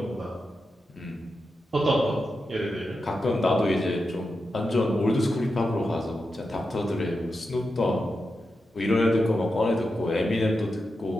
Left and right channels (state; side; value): normal; both; correlation 0.89